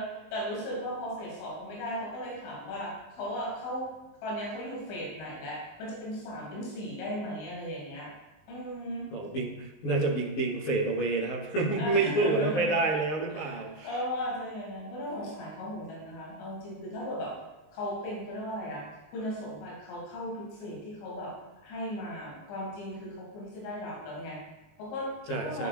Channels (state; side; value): late; right; 19 ms